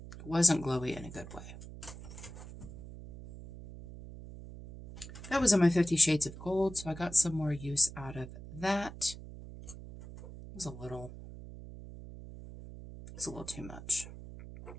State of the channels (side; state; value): right; noise; hum, 13 dB below the sound